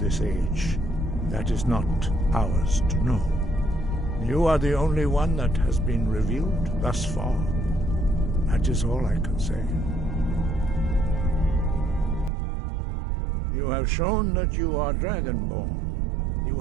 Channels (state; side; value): drops out; left; at 12.3 s